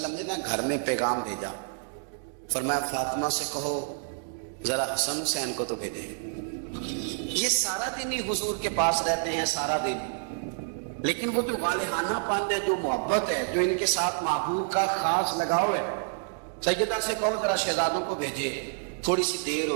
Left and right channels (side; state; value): left; silent; digital silence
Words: نے نا گھر میں پیغام بھیجا. فرمایا فاطمہ سے کہو ذرا حسن حسین کو تو بھیجے. یہ سارا دن ہی حضور کے پاس رہتے ہیں، سارا دن، لیکن وہ جو والہانہ پن ہے، جو محبت ہے، جو ان کے ساتھ محبوب کا خاص لگاؤ ہے. سیدہ سے کہو ذرا شہزادوں کو بھیجے، تھوڑی سی دیر